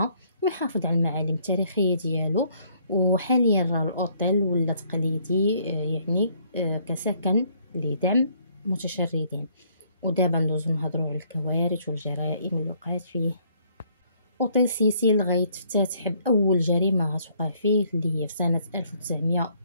ويحافظ على المعالم التاريخية ديالو. وحاليا الأوتيل ولا تقليدي يعني كسكن لدعم متشردين. ودابا ندوزو نهضروا على الكوارث والجرائم اللي وقعت فيه. أوتيل سيسيل غيتفتتح بأول جريمة غتوقع فيه اللي هي في سنة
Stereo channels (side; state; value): both; inverted; correlation -0.65